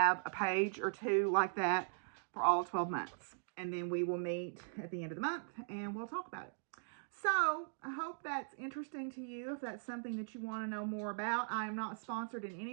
a page or two like that for all 12 months. And then we will meet at the end of the month and we'll talk about it. So I hope that's interesting to you. If that's something that you want to know more about, I am not sponsored in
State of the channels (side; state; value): left; silent; digital silence